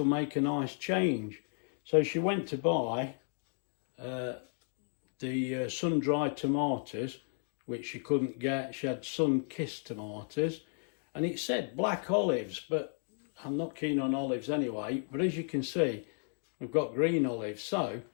make a nice change. So she went to buy the sun-dried tomatoes, which she couldn't get. She had sun-kissed tomatoes, and it said black olives, but I'm not keen on olives anyway. But as you can see, we've got green olives. So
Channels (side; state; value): right; silent; 55 dB below the other